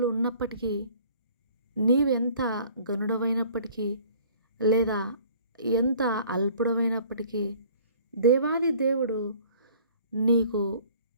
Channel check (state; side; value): inverted; both; correlation -0.53